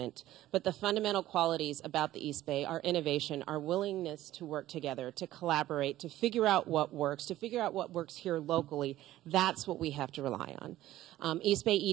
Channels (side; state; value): left; quieter; 14.7 dB